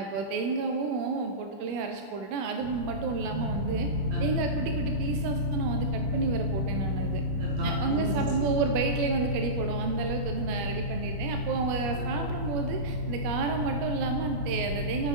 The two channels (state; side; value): late; left; 20 ms